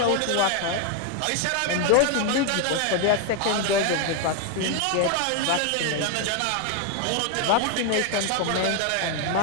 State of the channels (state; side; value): different; both; correlation 0.01